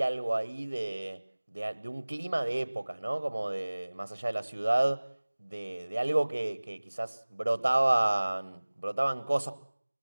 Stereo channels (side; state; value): both; inverted; correlation -1.00